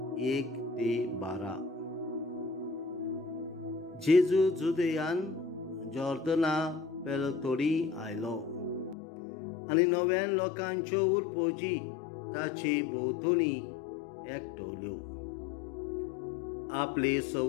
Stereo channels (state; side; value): drops out; right; at 9.0 s